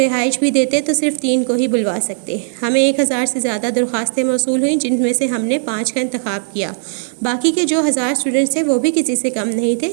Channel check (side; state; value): left; silent; digital silence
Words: بھی دیتے تو صرف 3 کو ہی بلوا سکتے. ہمیں 1000 سے زیادہ درخواستیں موصول ہوئیں جن میں سے ہم نے 5 کا انتخاب کیا. باقی کے جو 1000 اسٹوڈنٹس تھے وہ بھی کسی سے کم نہیں تھے،